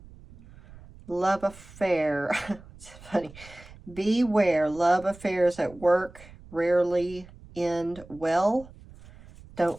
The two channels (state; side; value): noise; right; rumble, 20 dB below the sound